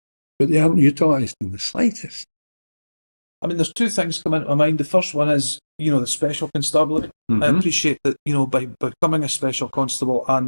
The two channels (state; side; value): inverted; both; correlation -1.00